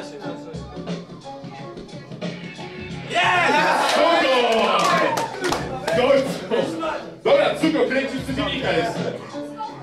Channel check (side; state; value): both; identical; correlation 1.00